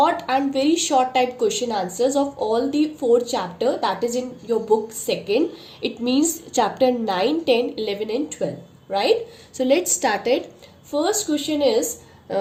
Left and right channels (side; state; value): both; identical; correlation 1.00